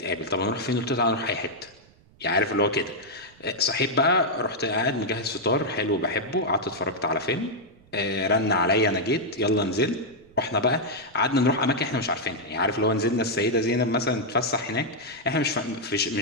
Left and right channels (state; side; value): noise; right; rumble, 28 dB below the sound